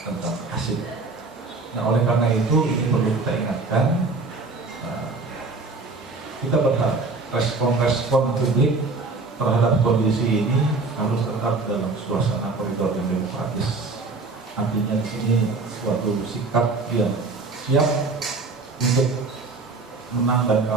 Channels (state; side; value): quieter; left; 3.8 dB